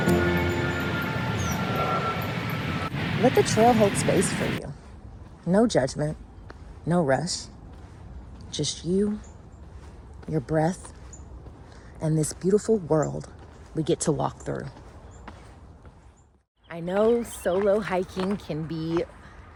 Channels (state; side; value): identical; both; correlation 1.00